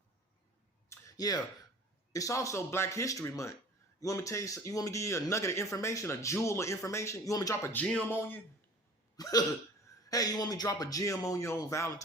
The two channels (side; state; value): both; normal; correlation 0.44